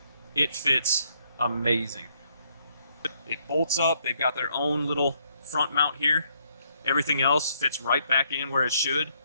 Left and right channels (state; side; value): inverted; both; correlation -0.71